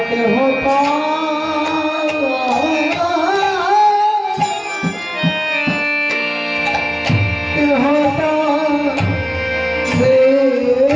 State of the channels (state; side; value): identical; both; correlation 1.00